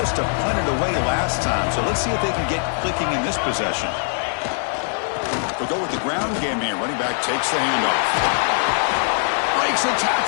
to punt it away last time, so let's see if they can get clicking in this possession. They'll go with the ground game here. Running back takes the handoff. Breaks a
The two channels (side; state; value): right; silent; 56 dB below the other